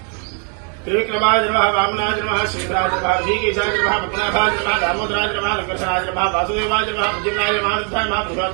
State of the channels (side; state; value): left; quieter; 36.8 dB